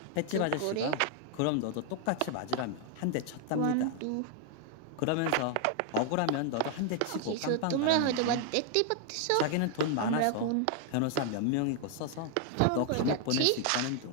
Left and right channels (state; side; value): different; both; correlation 0.00